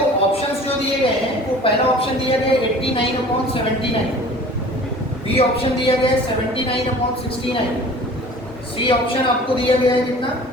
ऑप्शंस जो दिए गए हैं, वो पहला ऑप्शन दिया गया 89/79, बी ऑप्शन दिया गया 79/69, सी ऑप्शन आपको दिया गया है कितना?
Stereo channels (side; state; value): both; normal; correlation 0.45